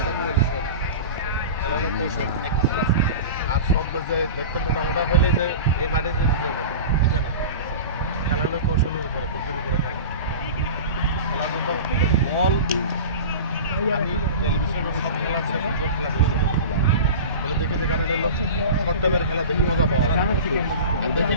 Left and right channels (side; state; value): both; inverted; correlation -0.32